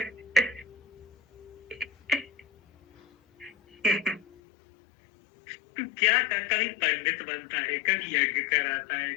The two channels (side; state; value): right; drops out; at 4.2 s